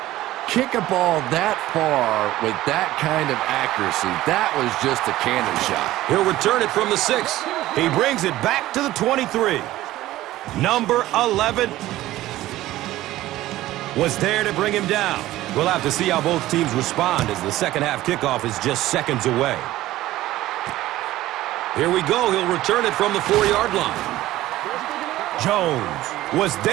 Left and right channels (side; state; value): left; quieter; 15.7 dB